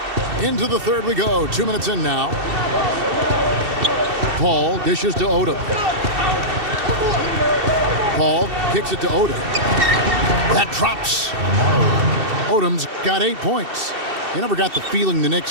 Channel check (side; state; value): left; late; 2.7 ms